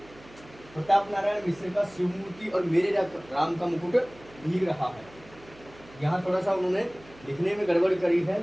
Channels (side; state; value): right; noise; hum, 23 dB below the sound